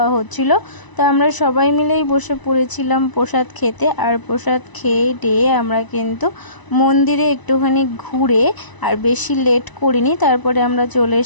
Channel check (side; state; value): right; late; 1.0 ms